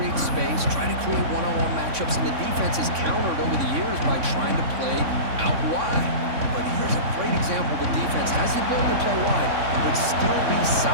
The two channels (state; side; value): late; left; 3.6 ms